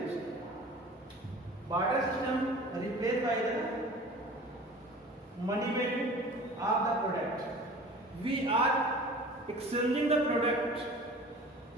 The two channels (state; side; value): normal; both; correlation 0.42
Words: Barter system replaced by the money value of the product. We are exchanging the product